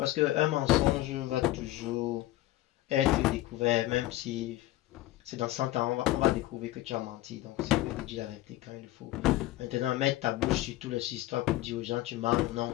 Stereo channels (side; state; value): right; quieter; 16.3 dB